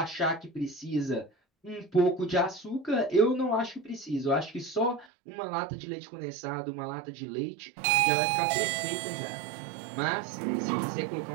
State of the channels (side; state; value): left; drops out; at 5.1 s